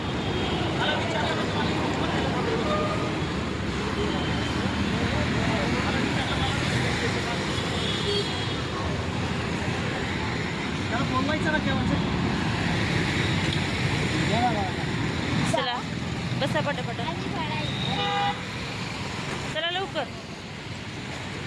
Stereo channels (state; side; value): identical; both; correlation 1.00